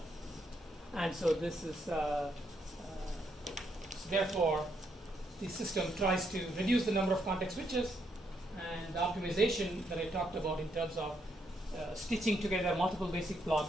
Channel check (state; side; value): normal; both; correlation 0.76